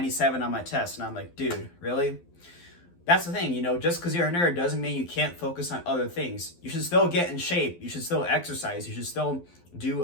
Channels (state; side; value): late; right; 12 ms